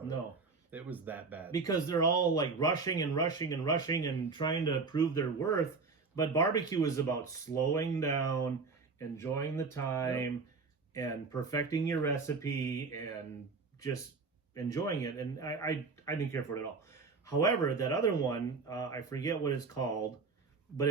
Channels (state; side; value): quieter; left; 4.4 dB